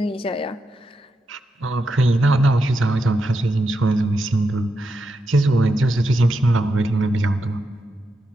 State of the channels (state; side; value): normal; both; correlation 0.85